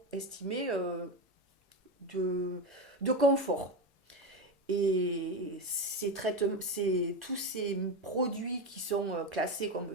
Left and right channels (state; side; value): normal; both; correlation 0.16